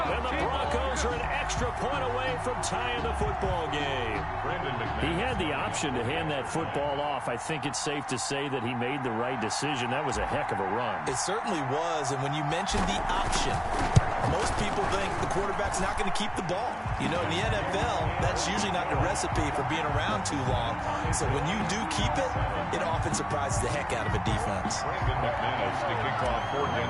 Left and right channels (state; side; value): identical; both; correlation 1.00